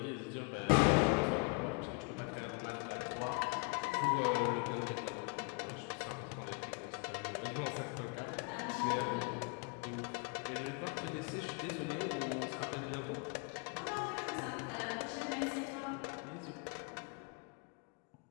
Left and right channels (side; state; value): right; quieter; 32.4 dB